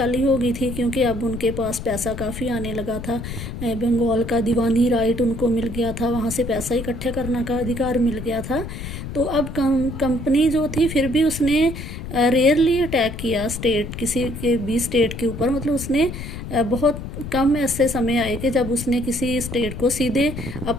हो गई थी क्योंकि अब उनके पास पैसा काफ़ी आने लगा था। बंगाल का दीवानी राइट उनको मिल गया था, वहाँ से पैसा इकट्ठा करने का अधिकार मिल गया था। तो अब कंपनी जो थी फिर भी उसने रेयरली अटैक किया स्टेट, किसी के भी स्टेट के ऊपर, मतलब उसने बहुत कम ऐसे समय आए कि जब उसने किसी स्टेट को सीधे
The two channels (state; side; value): noise; left; rumble, 8 dB below the sound